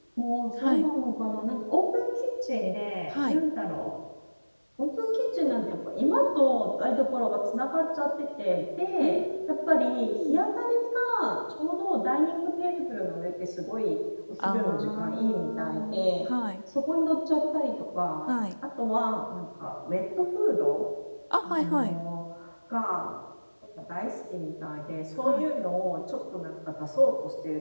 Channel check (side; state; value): both; inverted; correlation -1.00